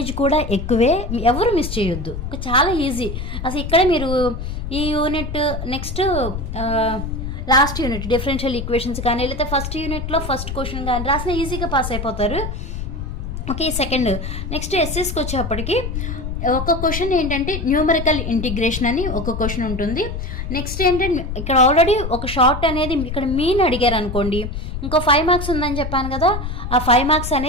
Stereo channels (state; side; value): noise; left; rumble, 5 dB below the sound